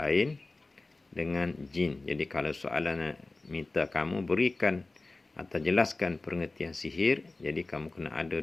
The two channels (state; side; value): quieter; right; 3.3 dB